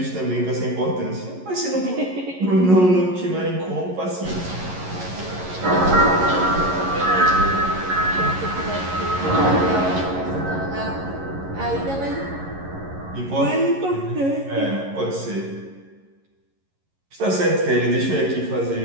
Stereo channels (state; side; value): late; left; 11 ms